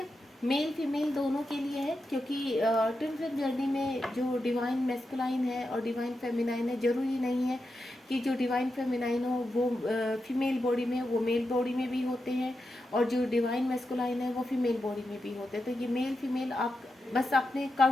मेल फीमेल दोनों के लिए है, क्योंकि ट्विन फ्लेम जर्नी में जो डिवाइन मैस्कुलाइन है और डिवाइन फेमिनाइन है, ज़रूरी नहीं है कि जो डिवाइन फेमिनाइन हो वो फीमेल बॉडी में, वो मेल बॉडी में भी होते हैं, और जो डिवाइन मैस्कुलाइन है वो फीमेल बॉडी में भी होते हैं। तो ये मेल फीमेल आप बस अपने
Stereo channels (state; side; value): normal; both; correlation 0.88